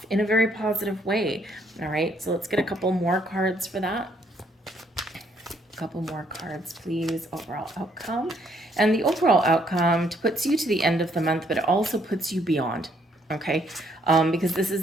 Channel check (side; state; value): both; normal; correlation 0.69